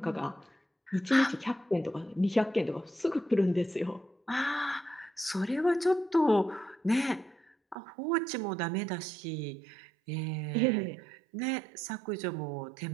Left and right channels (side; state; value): left; drops out; at 7.8 s